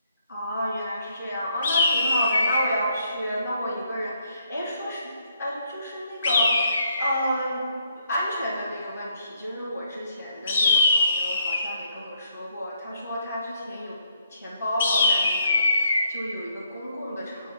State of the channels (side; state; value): both; inverted; correlation -0.72